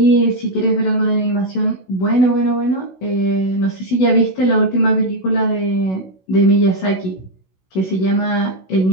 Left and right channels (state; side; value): late; right; 16 ms